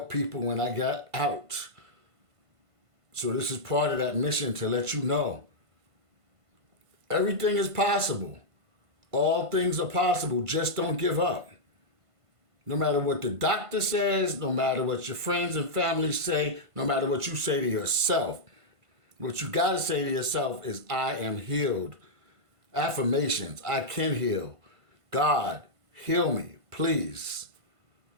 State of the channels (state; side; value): late; left; 1.5 ms